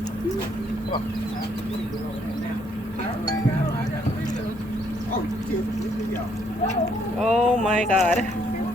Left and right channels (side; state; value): both; normal; correlation 0.69